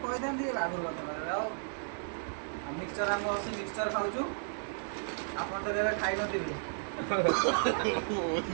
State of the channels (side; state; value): left; silent; digital silence